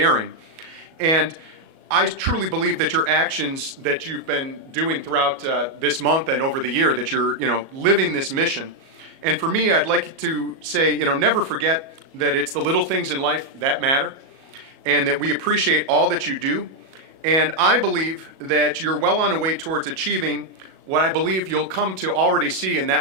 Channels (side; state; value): left; late; 37 ms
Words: And I truly believe that your actions that you've been doing throughout this month and over the year, that you're, you know, living this mission. And for me, I'd like to say, you know, never forget that it's the little things in life that matter, and that we appreciate all that you do. And I believe that you're well on the way towards achieving what I believe you'll come to already see in